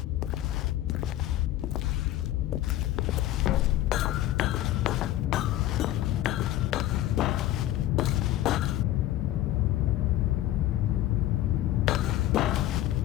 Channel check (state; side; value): quieter; right; 14.1 dB